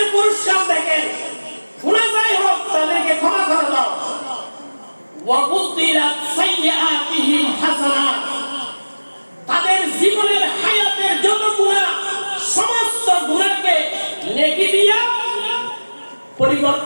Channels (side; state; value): both; inverted; correlation -1.00